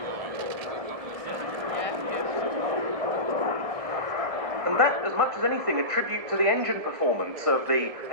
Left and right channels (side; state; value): left; late; 1.6 ms